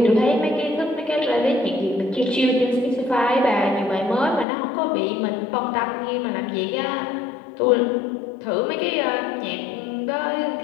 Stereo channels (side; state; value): right; drops out; at 4.5 s